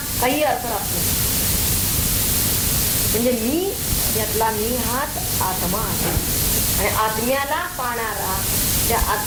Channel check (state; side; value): identical; both; correlation 1.00